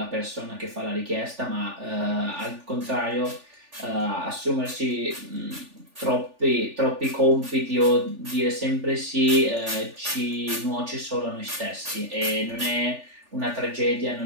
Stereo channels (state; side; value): late; left; 3.4 ms